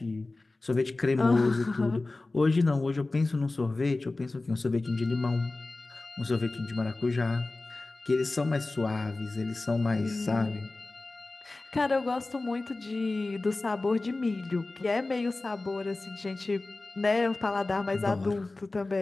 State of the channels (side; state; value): right; quieter; 3.2 dB